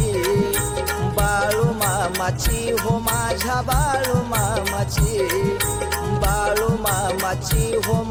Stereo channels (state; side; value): identical; both; correlation 1.00